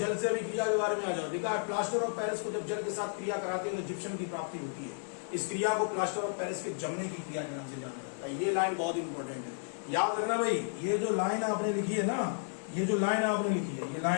से अभिक्रिया के बारे में आ जाओ। लिखा है प्लास्टर ऑफ पेरिस को जब जल के साथ क्रिया कराते हैं तो जिप्सम की प्राप्ति होती है। इस क्रिया को प्लास्टर ऑफ पेरिस के जमने की क्रिया के नाम से जाना जाता है। ये लाइन बहुत इंपॉर्टेंट है, याद रखना भाई। ये जो लाइन आपने लिखी है ना, ये जो लाइन आपने लिखी है,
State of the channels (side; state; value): right; silent; 56 dB below the other